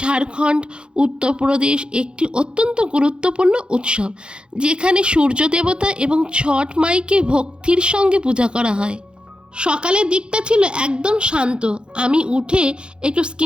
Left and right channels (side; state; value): left; late; 0.053 ms